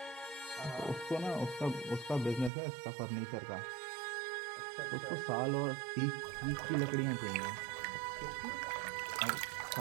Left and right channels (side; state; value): left; drops out; at 2.5 s